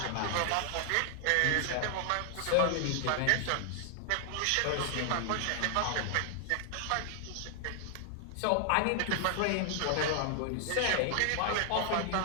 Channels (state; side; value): different; both; correlation 0.00